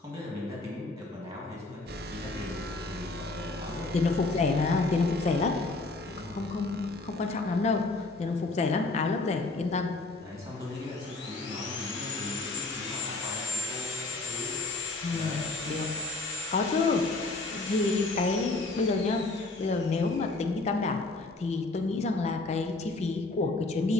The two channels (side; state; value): right; quieter; 3.2 dB